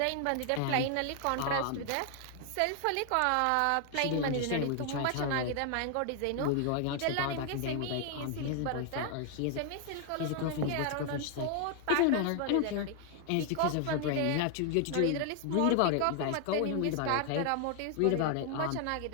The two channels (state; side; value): different; both; correlation 0.00